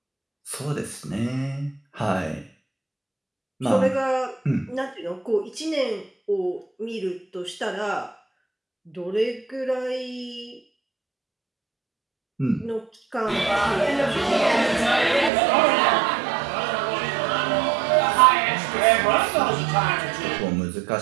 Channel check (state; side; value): drops out; left; at 15.3 s